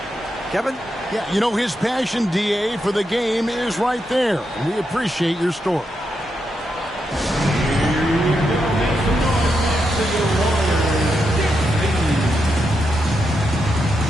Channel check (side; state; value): both; normal; correlation 0.84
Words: Kevin? Yeah, you know, his passion, DA, for the game is right there. And we appreciate your story.